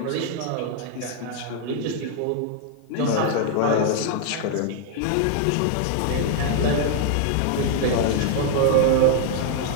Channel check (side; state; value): both; different; correlation 0.00